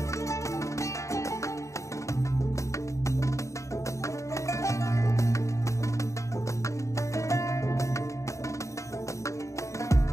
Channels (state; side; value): late; right; 0.15 ms